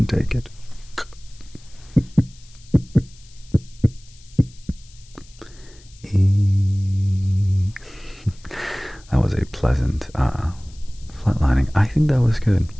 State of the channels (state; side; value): noise; left; hiss, 25 dB below the sound